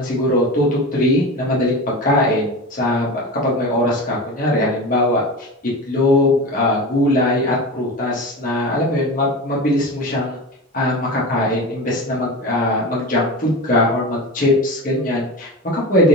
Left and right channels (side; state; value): both; normal; correlation 0.27